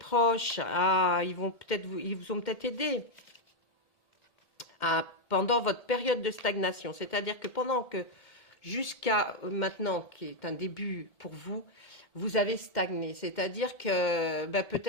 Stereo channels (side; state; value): right; late; 1.7 ms